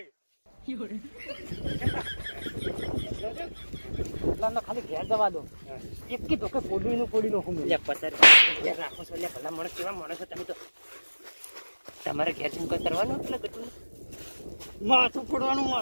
ખાલી ઘેર જવા દો એક કી તો કે પોડી નાખું લે પચાસ ઘેર રાખો છો લે ભલા માણસ કેવા માણસ છો તમે તો તમારે ઘેર શું કઈ કરવાનું એટલે કટું માથું ફોડવાનું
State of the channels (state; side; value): inverted; both; correlation -1.00